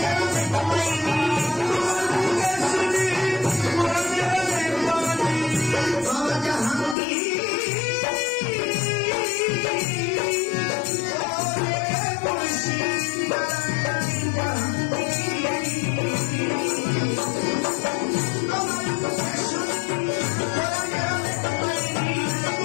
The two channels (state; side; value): drops out; right; at 7.0 s